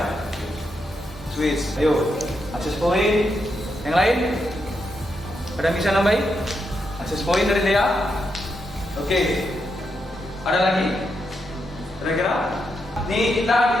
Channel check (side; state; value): both; normal; correlation 0.83